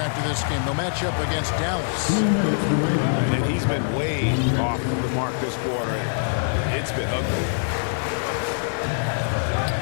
this game. They'll match up against Dallas. And he's been way off the mark this quarter. It's been ugly.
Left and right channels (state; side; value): silent; right; digital silence